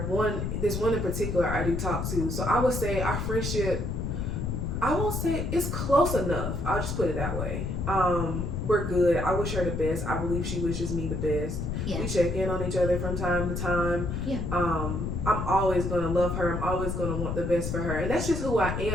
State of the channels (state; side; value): noise; left; rumble, 2 dB below the sound